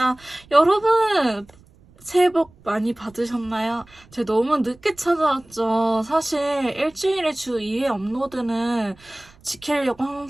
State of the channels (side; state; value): right; noise; rumble, 27 dB below the sound